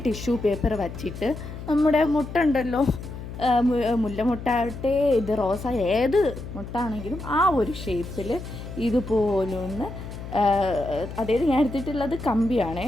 ടിഷ്യൂ പേപ്പർ വച്ചിട്ട് നമ്മുടെ മുട്ട ഉണ്ടല്ലോ, മുല്ലമുട്ടാവട്ടെ ഇത് റോസ ഏത് മുട്ടാണെങ്കിലും ആ ഒരു ഷേപ്പിൽ ഇതുപോലൊന്ന്, അതായത് ഞാൻ എടുത്തിട്ടുള്ളത് കമ്പിയാണേ,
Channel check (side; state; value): left; noise; hum, 10 dB below the sound